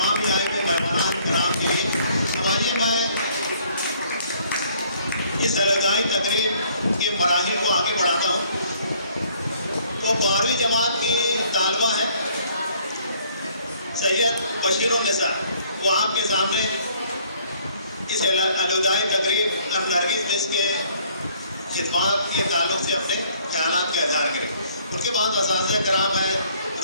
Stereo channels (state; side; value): inverted; both; correlation -0.60